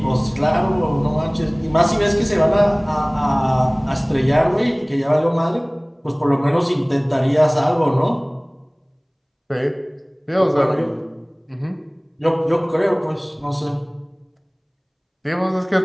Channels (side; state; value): both; identical; correlation 1.00